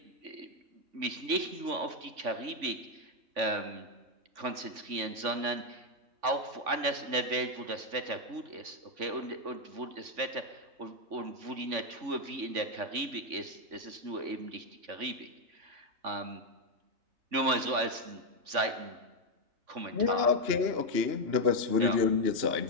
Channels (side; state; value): left; late; 3.5 ms